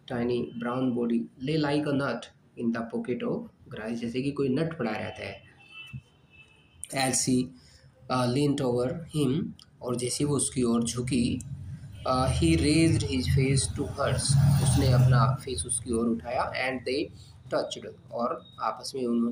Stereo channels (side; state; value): both; identical; correlation 1.00